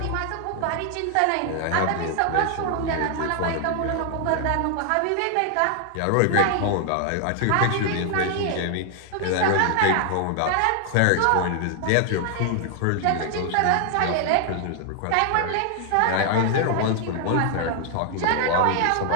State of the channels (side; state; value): both; different; correlation 0.00